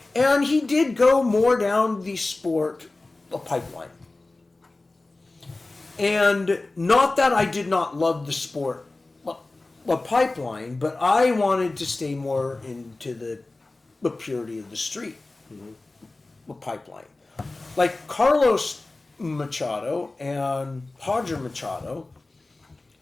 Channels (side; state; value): right; quieter; 3.1 dB